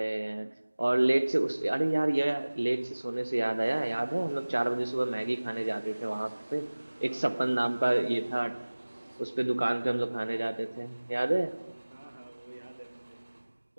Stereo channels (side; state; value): both; inverted; correlation -1.00